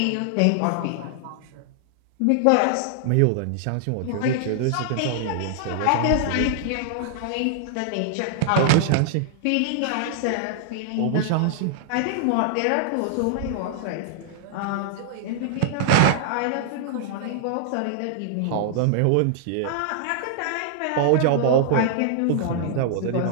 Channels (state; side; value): different; both; correlation -0.01